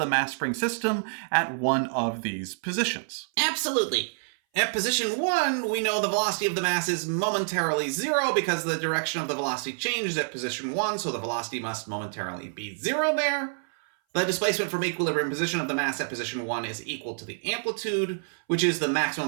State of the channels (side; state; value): left; silent; 58 dB below the other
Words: mass spring system at one of these positions. Absolutely. At position 1, we know the velocity of the mass is momentarily 0 because the direction of the velocity changes at position 1, so the velocity must momentarily be 0 there. The displacement from equilibrium position of the mass at position 1 is equal to the amplitude, which is the maximum